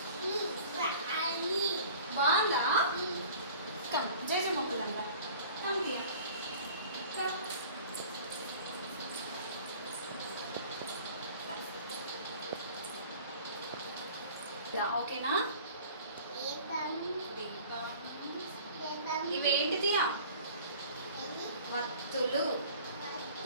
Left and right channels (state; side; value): inverted; both; correlation -0.46